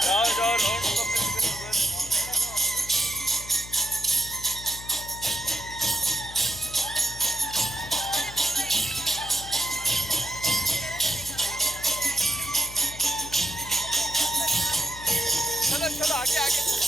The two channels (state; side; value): noise; left; hum, 14 dB below the sound